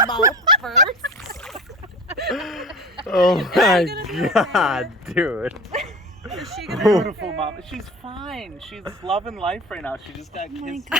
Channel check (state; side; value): normal; both; correlation 0.34